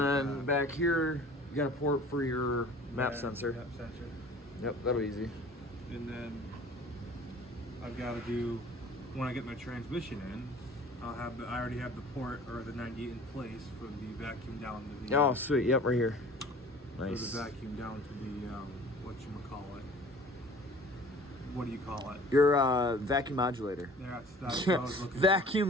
that. Back here, you got a port for your map sensor. Map sensor. Yep, that'll be easy. And then I've got to do, when I get my transmission in, I already have the port or the 98 in place for the vacuum down to the. Oh, sweet. Yep, right here. Nice. For the vacuum down to the whatchamacallit. What do you call it? Your vacuum modulator. That's what I was looking vacuum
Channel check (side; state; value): both; normal; correlation 0.47